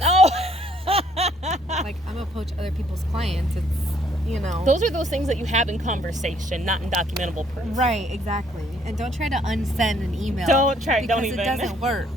Oh. Like I'm gonna poach other people's clients. It's, you know. Those are those things that you have in conversation, not in documentable proof. Right, exactly. And don't try to unsend an email. Don't even. It doesn't work.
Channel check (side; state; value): both; normal; correlation 0.65